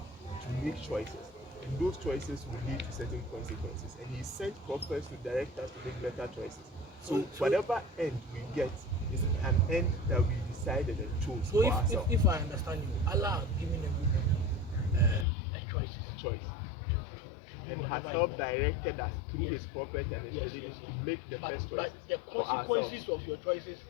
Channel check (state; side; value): drops out; right; at 15.2 s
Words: to make choices, and those choices will lead to certain consequences. And He sent prophets to direct us to make better choices. So whatever end we get is an end that we decided and chose So for ourselves. if I understand you, Allah has given everybody a choices. Choice. and has whatever helped you want. directed us through Yes. his prophets and his Yes, religion yes, to yes. make the best But choices the for consequences ourselves of your choices,